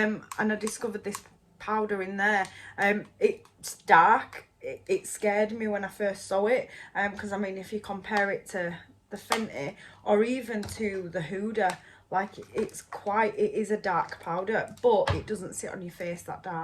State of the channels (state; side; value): identical; both; correlation 1.00